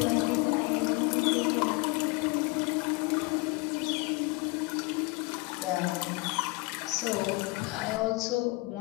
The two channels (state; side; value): quieter; right; 24.8 dB